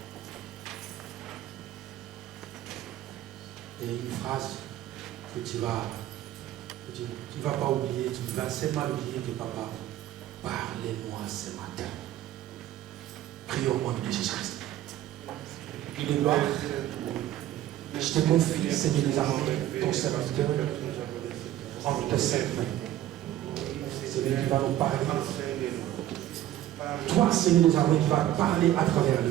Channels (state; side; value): quieter; left; 13.0 dB